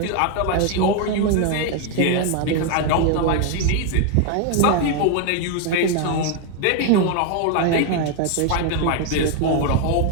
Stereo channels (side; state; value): both; different; correlation 0.01